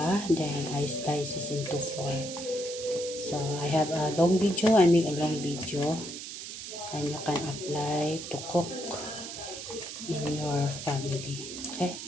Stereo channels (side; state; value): right; noise; hiss, 9 dB below the sound